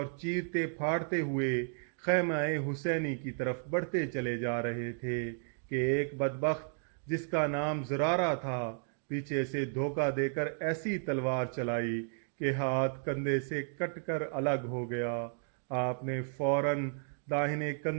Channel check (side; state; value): left; silent; 56 dB below the other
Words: چیرتے پھاڑتے ہوئے خیمہ حسینی کی طرف بڑھتے چلے جا رہے تھے کہ ایک بدبخت جس کا نام زرارہ تھا پیچھے سے دھوکہ دے کر ایسی تلوار چلائی کہ ہاتھ کندھے سے کٹ کر الگ ہو گیا۔ آپ نے فوراً داہنے